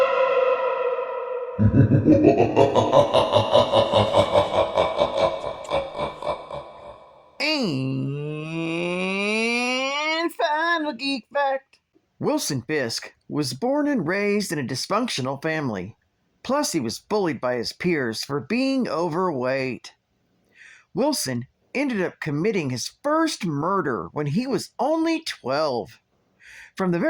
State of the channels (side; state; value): both; identical; correlation 1.00